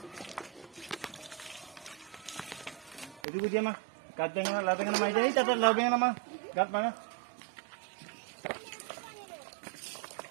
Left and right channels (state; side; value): drops out; left; at 3.2 s